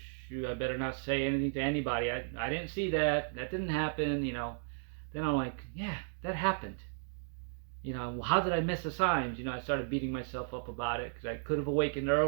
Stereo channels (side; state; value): left; silent; digital silence